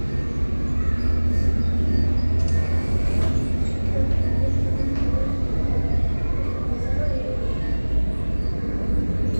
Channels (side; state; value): both; inverted; correlation -1.00